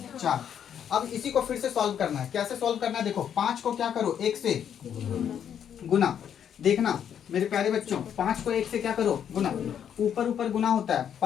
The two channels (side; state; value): right; quieter; 8.9 dB